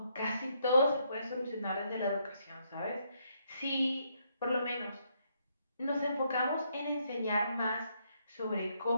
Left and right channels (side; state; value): both; inverted; correlation -0.74